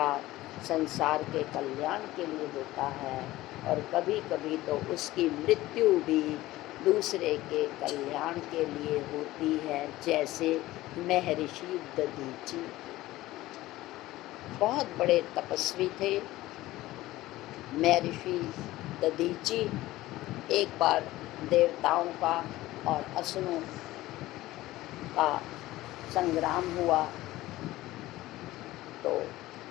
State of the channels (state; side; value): quieter; right; 17.0 dB